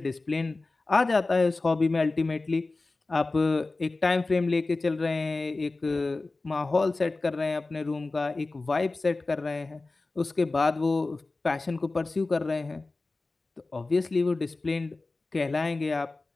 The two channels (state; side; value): quieter; right; 3.4 dB